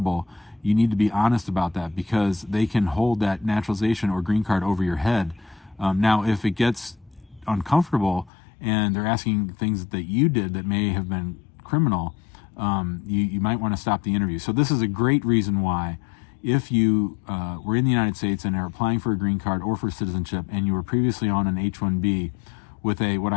you need to be honest about that because they can hold that naturalization or green card over your head. Now, if it gets uncomfortable and they're asking things that you did that may have been criminal, you might want to stop the interview. So this is a great reason why, if you were in the United States and are applying for a green card or for citizenship and you were previously on an H1B with what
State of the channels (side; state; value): right; drops out; at 8.3 s